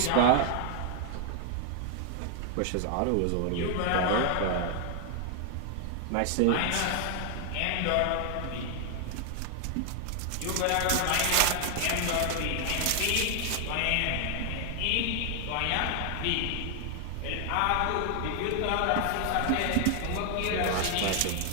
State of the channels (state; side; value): different; both; correlation 0.00